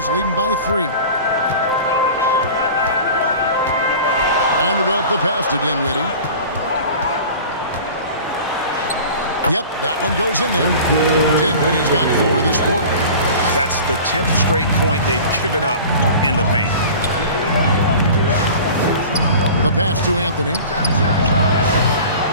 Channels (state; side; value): inverted; both; correlation -0.39